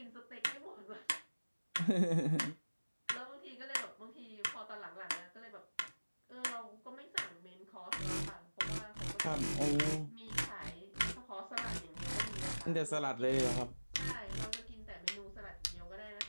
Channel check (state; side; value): inverted; both; correlation -1.00